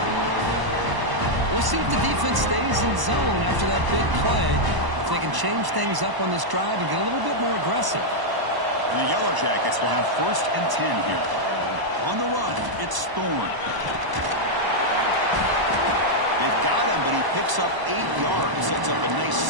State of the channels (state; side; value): late; left; 1.0 ms